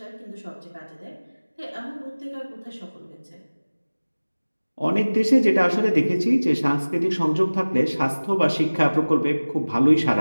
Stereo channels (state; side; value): inverted; both; correlation -1.00